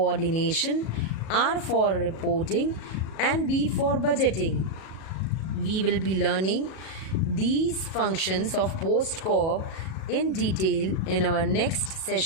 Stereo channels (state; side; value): late; right; 37 ms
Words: R for reporting, and B for budgeting. We will be learning these functions of Post Corp in detail in our next